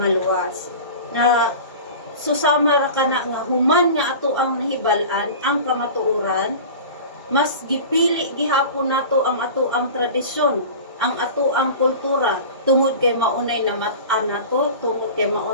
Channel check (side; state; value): both; inverted; correlation -0.35